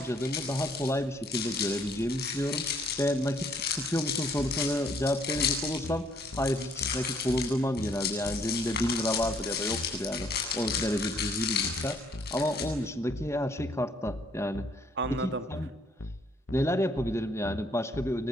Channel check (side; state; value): both; normal; correlation 0.65